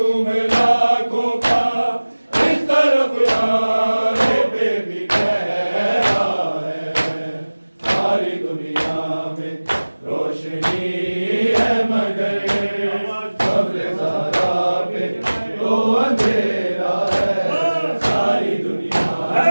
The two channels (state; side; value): inverted; both; correlation -1.00